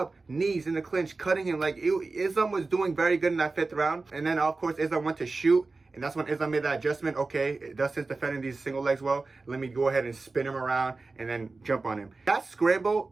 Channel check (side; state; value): left; quieter; 3.7 dB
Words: knees in the clinch, cutting him. Like Islam was doing very good in that 5th round. And then of course Islam went to shoot. And that's when Islam made that adjustment. Okay, Dustin's defending these single legs well. Let me go ahead and spin him around and then jump on him. That